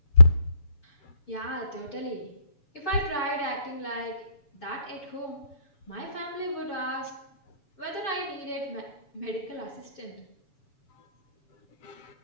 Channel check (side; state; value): right; late; 7.0 ms